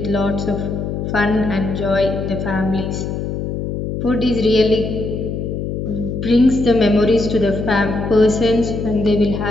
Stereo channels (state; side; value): noise; left; hum, 4 dB below the sound